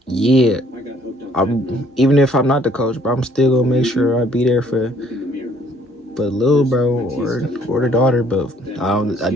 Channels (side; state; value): both; normal; correlation 0.62